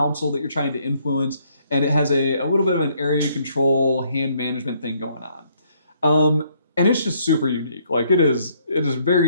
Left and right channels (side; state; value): both; inverted; correlation -0.68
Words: that you're trying to influence, and it has a little bit of an area control hand management thing going on. And it's just super unique. Like it is